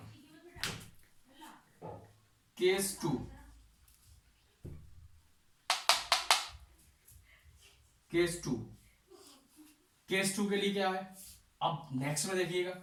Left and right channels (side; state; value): both; identical; correlation 1.00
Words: Case 2, case 2, case 2 के लिए क्या है, अब नेक्स्ट में देखिएगा,